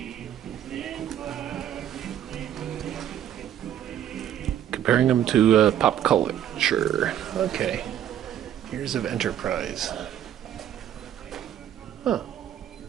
Comparing them to pop culture. Okay. Years of Enterprise. Huh.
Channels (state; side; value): quieter; left; 10.7 dB